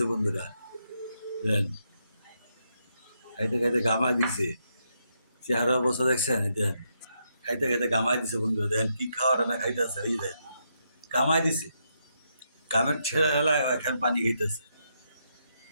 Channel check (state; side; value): inverted; both; correlation -0.80